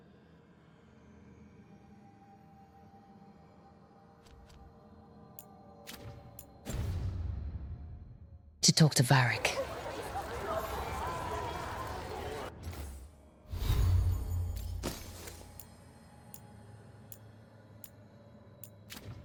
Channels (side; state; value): both; identical; correlation 1.00